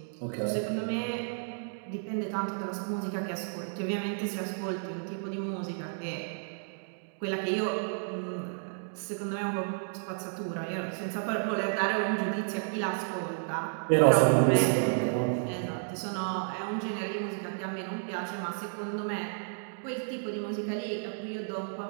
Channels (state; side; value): silent; left; digital silence